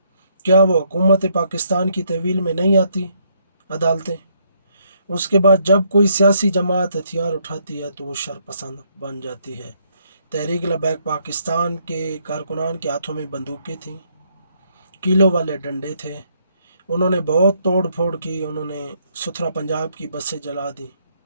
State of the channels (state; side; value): inverted; both; correlation -0.72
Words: کیا وہ حکومت پاکستان کی تحویل میں نہیں آتی عدالتیں؟ اس کے بعد جب کوئی سیاسی جماعت ہتھیار اٹھاتی ہے تو وہ شرپسند بن جاتی ہے۔ تحریک لبیک پاکستان کے کارکنان کے ہاتھوں میں بندوقیں تھیں، کیلوں والے ڈنڈے تھے، انہوں نے بہت توڑ پھوڑ کی، انہوں نے ستھرا پنجاب کی بسیں جلا دیں،